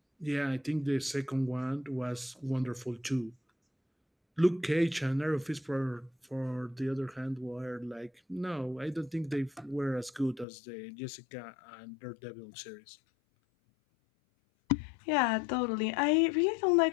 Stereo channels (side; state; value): right; drops out; at 10.5 s